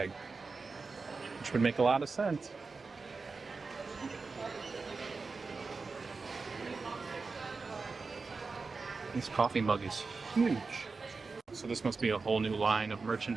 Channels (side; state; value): left; quieter; 4.3 dB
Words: which would make a lot of sense. This coffee mug is huge. So this must be a whole new line of